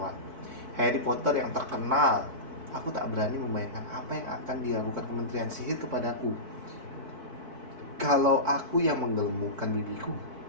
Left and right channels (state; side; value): late; left; 4.6 ms